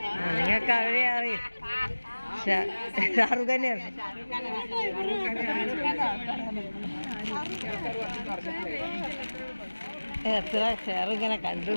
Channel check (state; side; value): inverted; both; correlation -1.00